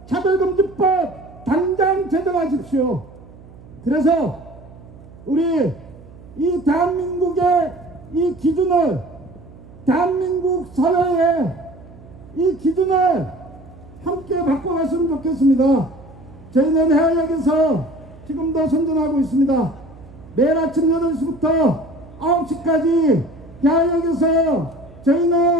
차별금지법 당장 제정하십시오. 그래서 우리 이 대한민국의 이 기준을 대한민국 사회에 이 기준을 함께 바꿔갔으면 좋겠습니다. 저희는 해외역에서 지금도 선전하고 있습니다. 매일 아침 8시부터 9시까지 해외역에서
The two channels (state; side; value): noise; right; hum, 21 dB below the sound